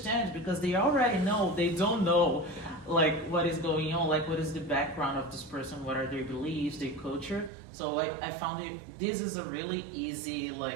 because they already know they don't know like what is going on, like what is the background of this person, what are their beliefs, their culture. So I found this is a really easy,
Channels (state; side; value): drops out; left; at 7.5 s